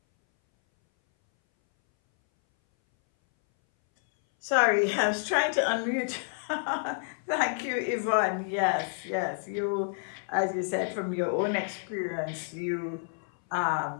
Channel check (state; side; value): silent; right; 58 dB below the other